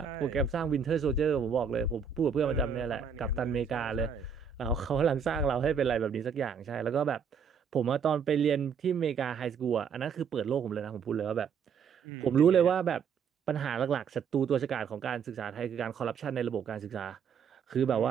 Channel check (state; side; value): quieter; left; 6.6 dB